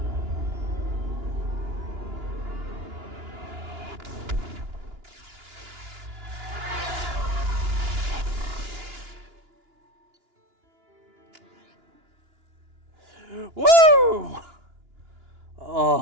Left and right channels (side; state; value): left; late; 2.9 ms